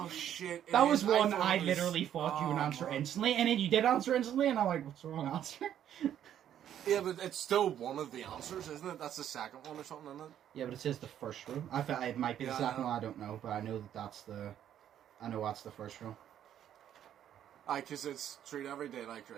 shit. That was one I literally thought you would answer instantly, and then you did answer instantly, and I'm like, what's the wrong answer? Yeah, but it's still one of the answers, isn't it? That's the second one or something, isn't it? Yeah, but it says the first row. I thought it might be the second one, I don't know, but I know that's the first row. Aye, because it's treat every day like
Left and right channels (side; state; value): left; quieter; 10.4 dB